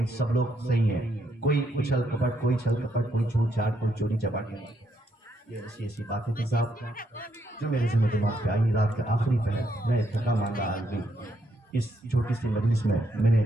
सब लोग सही है, कोई उछल कपट, कोई छल कपट, कोई छूट छाट, कोई चोरी चपाटी नहीं। ये ऐसी बातें थी साहब जो मेरे जिम्मे दिमाग पे आई। रात के आखिरी पहर मैं थका मांदा आदमी इस छोटी सी मजलिस में मैंने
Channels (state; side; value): normal; both; correlation 0.76